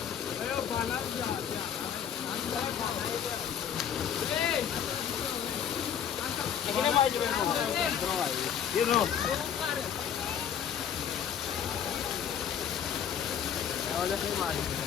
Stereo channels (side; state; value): right; quieter; 8.5 dB